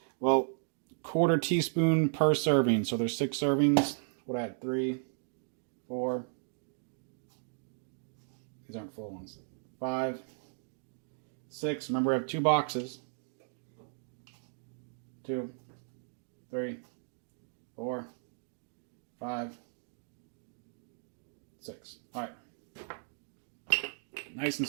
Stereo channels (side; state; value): left; silent; digital silence